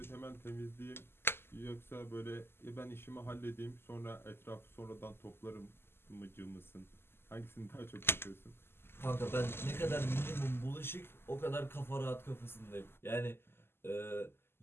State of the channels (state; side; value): late; right; 0.12 ms